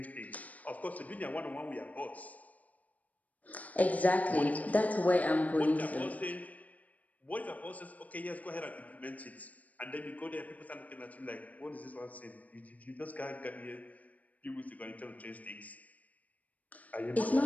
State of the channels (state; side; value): late; right; 0.073 ms